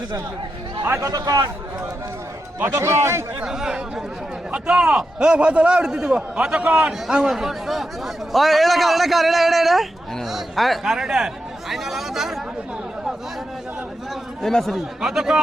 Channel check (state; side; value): normal; both; correlation 0.87